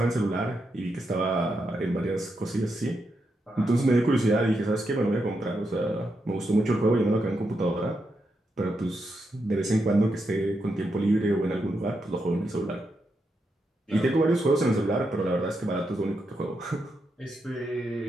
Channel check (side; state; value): both; normal; correlation 0.84